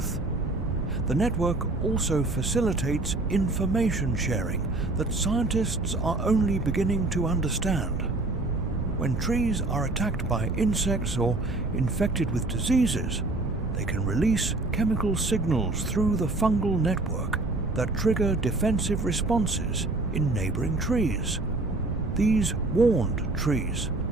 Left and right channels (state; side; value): quieter; left; 3.0 dB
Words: The network also facilitates information sharing that scientists are only beginning to understand. When trees are attacked by insects or infected with diseases, they can release chemical signals through the fungal network, that trigger defensive responses in neighboring trees. These warned trees